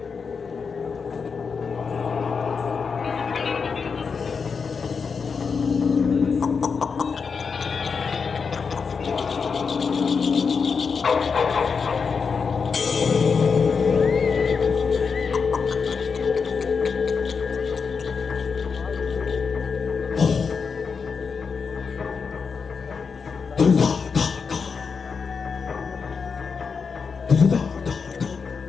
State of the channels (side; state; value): right; quieter; 5.5 dB